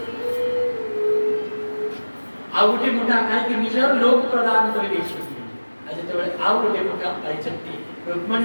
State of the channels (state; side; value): inverted; both; correlation -1.00